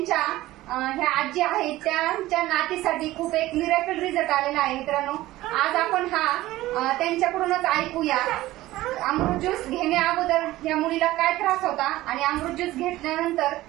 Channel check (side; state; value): left; quieter; 16.7 dB